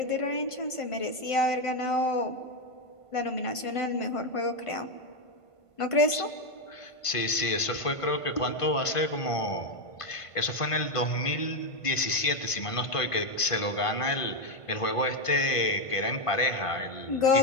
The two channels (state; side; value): late; right; 1.5 ms